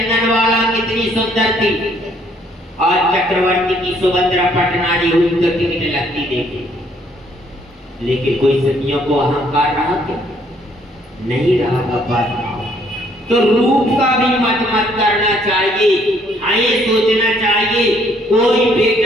वाला कितनी सुंदर थी। आज चक्रवर्ती की सुभद्रा पटनारी हुई तो टिकट लगती देखी, लेकिन कोई सतियों को अहंकार रहा क्या? नहीं रहा बाबा। तो रूप का भी मत करना चाहिए। हाँ, ये सोचना चाहिए कोई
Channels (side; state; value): both; normal; correlation 0.65